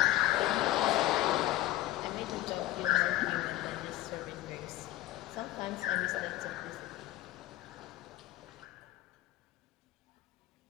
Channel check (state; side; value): quieter; right; 15.6 dB